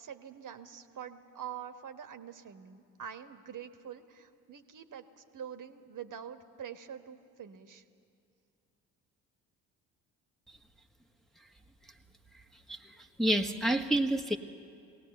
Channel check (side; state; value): both; normal; correlation 0.74